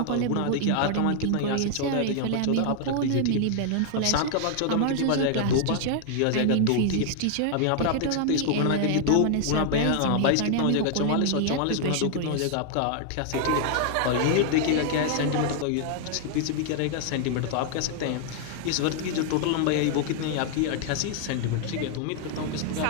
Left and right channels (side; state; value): both; different; correlation 0.00